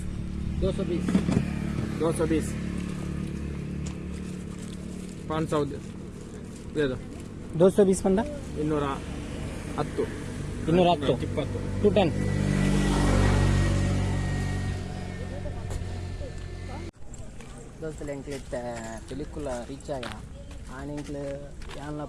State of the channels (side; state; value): both; identical; correlation 1.00